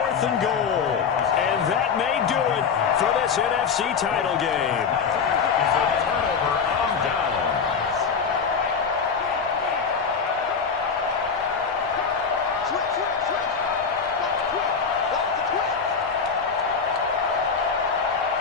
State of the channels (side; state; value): right; quieter; 6.0 dB